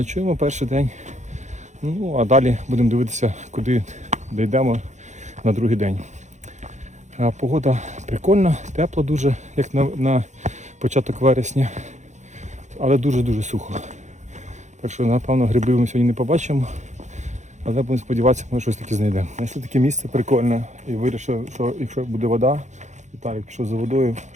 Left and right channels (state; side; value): late; left; 0.34 ms